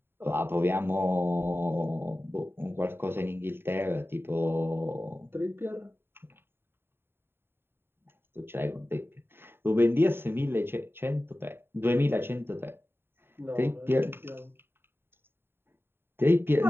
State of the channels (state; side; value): late; left; 0.11 ms